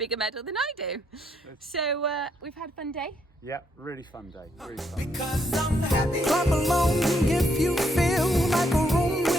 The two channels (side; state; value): both; normal; correlation 0.74